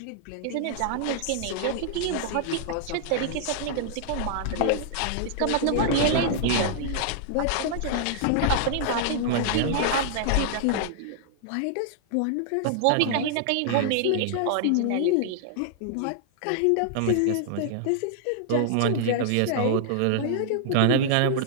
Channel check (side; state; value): both; different; correlation -0.01